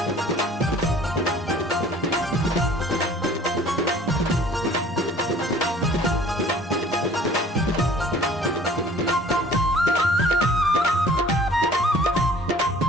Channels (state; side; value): normal; both; correlation 0.51